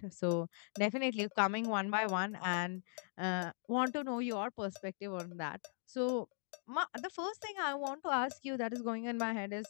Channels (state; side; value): silent; right; digital silence